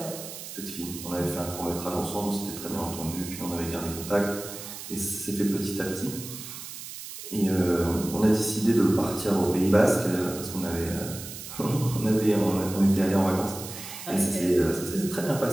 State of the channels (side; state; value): right; noise; hiss, 11 dB below the sound